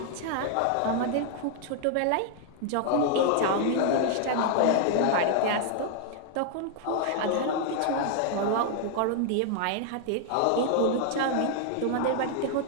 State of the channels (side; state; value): both; different; correlation 0.00